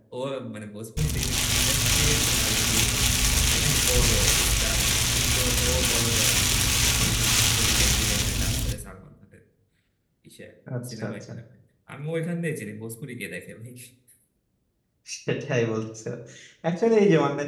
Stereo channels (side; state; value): both; identical; correlation 1.00